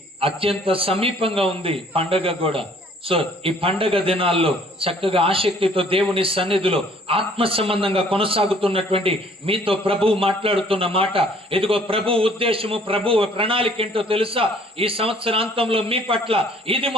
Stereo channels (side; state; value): both; normal; correlation 0.58